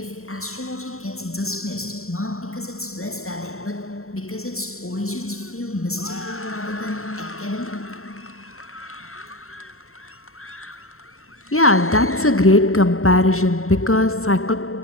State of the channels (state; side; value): late; right; 0.63 ms